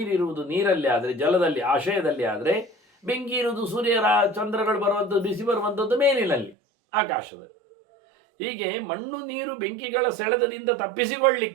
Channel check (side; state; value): left; drops out; at 6.6 s